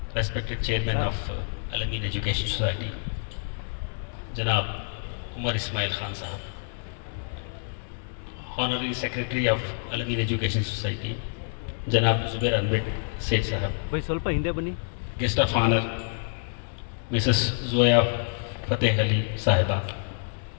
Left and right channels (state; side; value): silent; right; digital silence